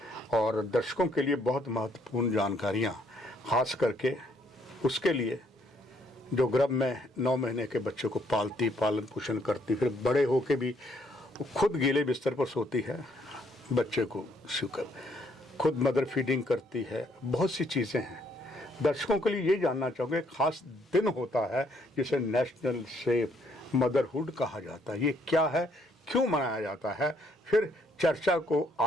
और दर्शकों के लिए बहुत महत्वपूर्ण जानकारियां, खास करके उसके लिए जो गर्भ में 9 महीने के बच्चे को पालती, पालन पोषण करती, फिर बड़े होके भी खुद गीले बिस्तर पर सोती है, बच्चे को शुकर खुद मदर फीडिंग करती है, बहुत सी चीज़ें हैं। दर्शकों के लिए ये जानना चाहूँगे, खास दिन होता है जिसे नेशनल सेफ मदरहुड कहा जाता है, ये क्या है, क्यों मनाया जाता है? फिर चर्चा को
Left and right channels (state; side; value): normal; both; correlation 0.68